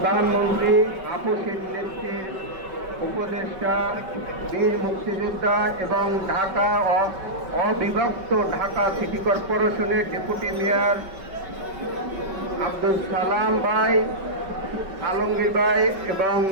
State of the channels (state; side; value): late; left; 5.3 ms